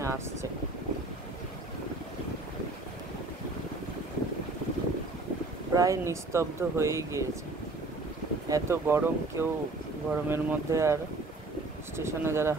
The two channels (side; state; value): left; quieter; 3.1 dB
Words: আসছে। প্রায় নিস্তব্ধ হয়েই গিয়েছে। এত গরম, কেউ গরমের মধ্যে আর স্টেশনে যারা